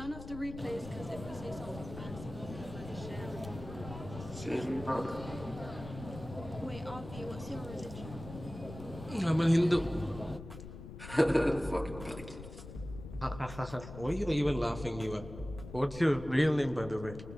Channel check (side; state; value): left; noise; rumble, 12 dB below the sound